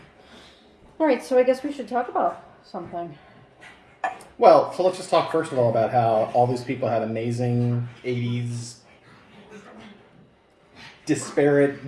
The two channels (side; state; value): both; identical; correlation 1.00